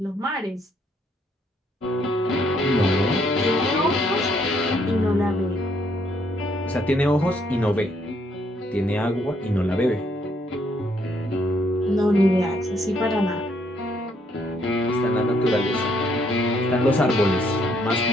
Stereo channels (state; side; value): normal; both; correlation 0.70